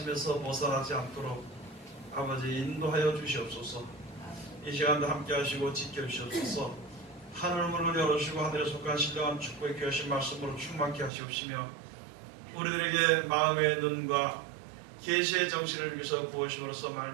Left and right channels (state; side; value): drops out; left; at 11.1 s